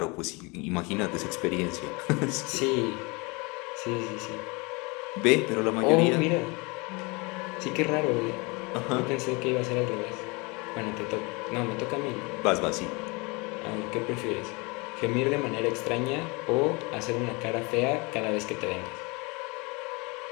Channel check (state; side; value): quieter; right; 27.7 dB